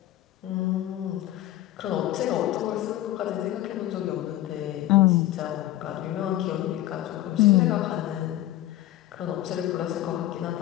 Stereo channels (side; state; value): right; quieter; 14.6 dB